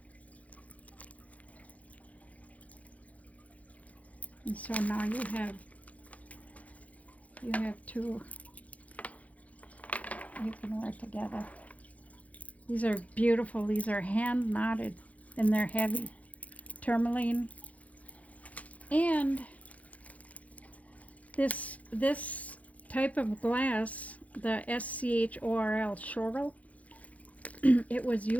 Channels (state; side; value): late; right; 0.069 ms